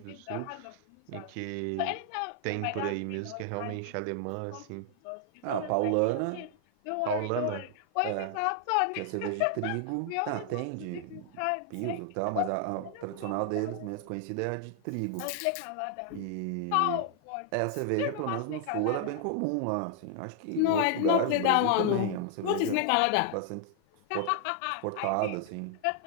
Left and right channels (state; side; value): different; both; correlation 0.00